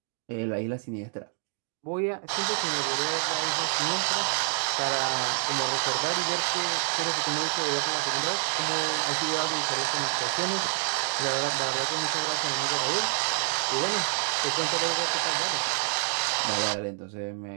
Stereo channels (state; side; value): silent; left; digital silence